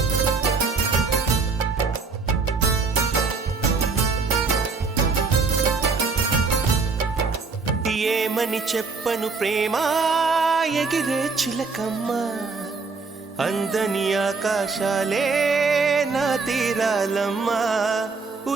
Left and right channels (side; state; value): left; quieter; 4.4 dB